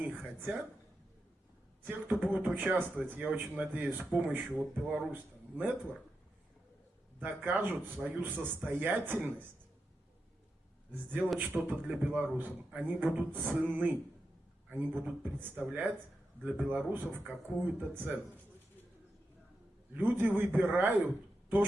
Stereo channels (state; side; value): normal; both; correlation 0.88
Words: хотят, те, кто будут участвовать, я очень надеюсь, с помощью вот Беларусь Network, докажут свою состоятельность сделать что-то для белорусов. Они будут ценны, они будут представлять для белорусов какую-то ценность. Люди выбирают то,